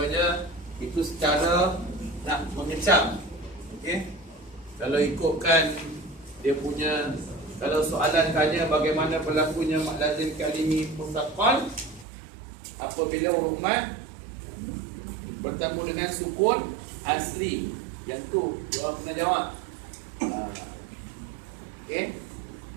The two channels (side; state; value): left; drops out; at 12.1 s